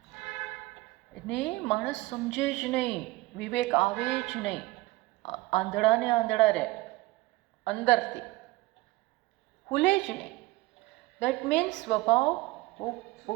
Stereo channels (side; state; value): left; quieter; 20.2 dB